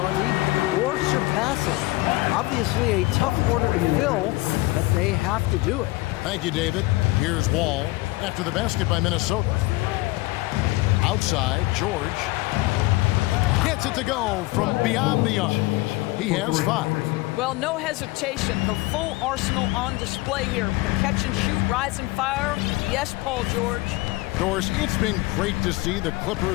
or surpass it. Obviously a tough order to fill, but they have to do it. Thank you, David. Here's Wall after the basket by Minnesota. Outside, George gets it to go from beyond the arc. He has 5. Well, no hesitation. The full arsenal on display here. The catch and shoot, rise and fire. Yes, Paul George. Doris, it's been great to see the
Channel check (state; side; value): quieter; right; 21.0 dB